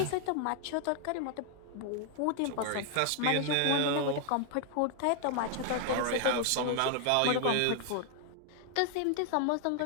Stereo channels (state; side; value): different; both; correlation 0.00